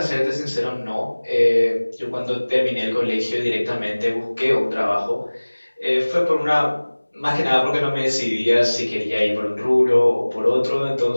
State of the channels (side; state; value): both; inverted; correlation -1.00